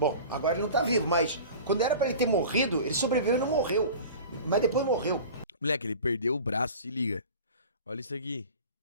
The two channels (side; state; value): both; inverted; correlation -0.38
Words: agora ele não tá vivo, mas quando era pra ele ter morrido, ele sobreviveu e não morreu. Mas depois morreu. Moleque, ele perdeu o braço, se liga. Olha isso aqui.